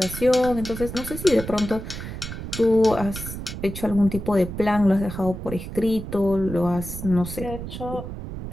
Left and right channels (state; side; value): noise; right; rumble, 8 dB below the sound